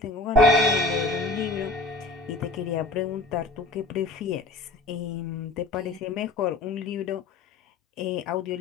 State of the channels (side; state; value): right; quieter; 3.1 dB